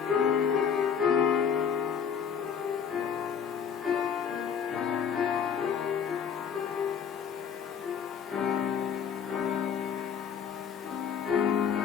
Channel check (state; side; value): quieter; right; 7.4 dB